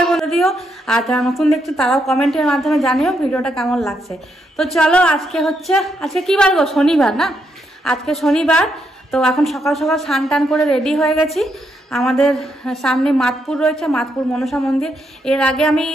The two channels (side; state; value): both; normal; correlation 0.79